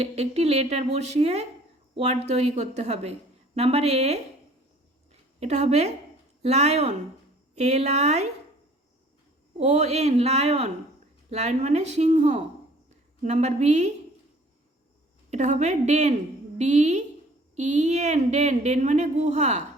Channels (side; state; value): both; normal; correlation 0.53